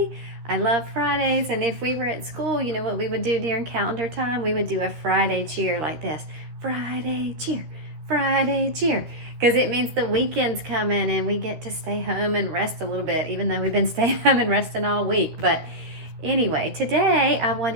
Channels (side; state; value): left; late; 13 ms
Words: I love Fridays, and if we were at school, you know what we would do during calendar time? We would do a Friday cheer like this. Friday cheer, Friday cheer. Because it means the weekend's coming and we get to stay home and rest a little bit, even though we've been staying home and resting all week. But anyway, today I